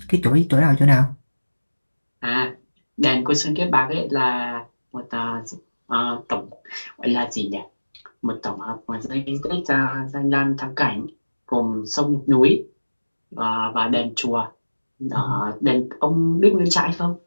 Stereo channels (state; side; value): inverted; both; correlation -1.00